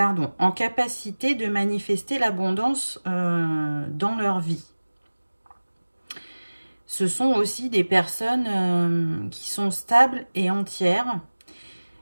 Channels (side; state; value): both; inverted; correlation -1.00